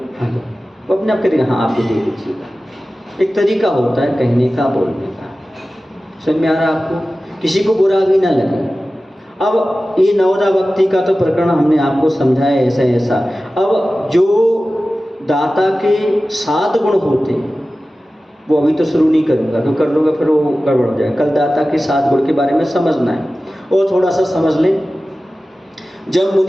हाँ, वो अपने आप करेगा, हाँ आप भी दे लीजिएगा। एक तरीका होता है कहने का, बोलने का। समझ में आ रहा है आपको? किसी को बुरा भी ना लगे। अब ये नवदा भक्ति का तो प्रकरण हमने आपको समझाया ऐसा ऐसा। अब जो दाता के 7 गुण होते हैं वो अभी तो शुरू नहीं करूँगा, तो कर लूँगा फिर वो गड़बड़ हो जाएगा। कल दाता के 7 गुण के बारे में समझना है, और थोड़ा सा समझ लें। जब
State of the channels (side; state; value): both; normal; correlation 0.95